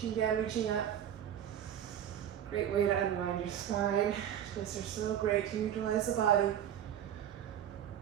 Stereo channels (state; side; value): quieter; left; 10.1 dB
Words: down, reaching up. Great way to unwind your spine. Twists are so great to utilize the body.